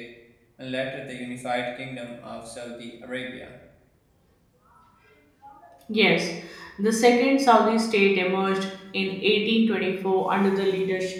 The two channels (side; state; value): both; identical; correlation 1.00